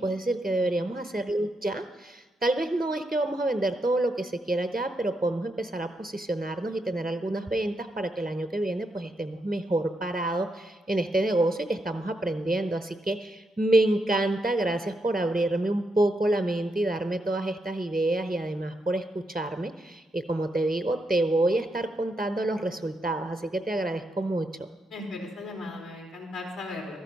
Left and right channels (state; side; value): normal; both; correlation 0.81